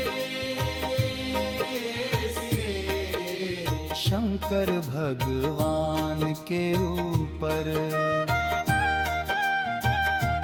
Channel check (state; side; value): identical; both; correlation 1.00